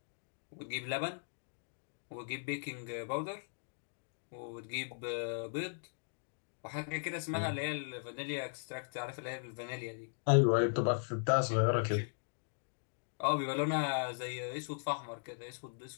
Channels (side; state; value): right; silent; digital silence